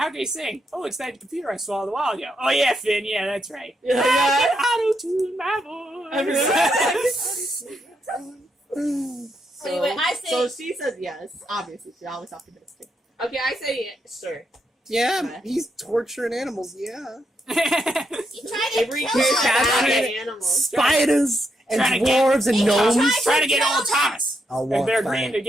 can he sing? Oh, it's that computer I swallowed a while ago. Oh yeah, Finn. Yeah, that's right. Yeah. I can auto-tune my voice. Anyway, I say So she says yes. Obviously, she's always optimistic. Okay, I say sure. Yeah, he's torturing animals, yeah. you try to Avery kill cares him. about Fascinating. animals. Spiders and Trying to get- dwarves and gnomes. Trying to get old Thomas. I'll If walk they're by agreeing it. to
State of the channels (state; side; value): normal; both; correlation 0.80